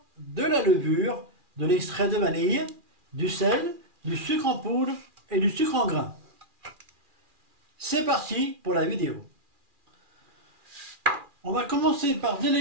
de la levure, de l'extrait de vanille, du sel, du sucre en poudre et du sucre en grains. C'est parti pour la vidéo. On va commencer par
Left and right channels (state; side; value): late; left; 2.4 ms